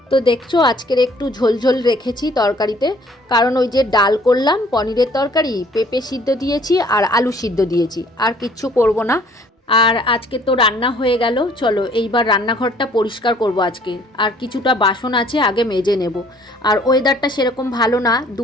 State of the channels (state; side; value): normal; both; correlation 0.57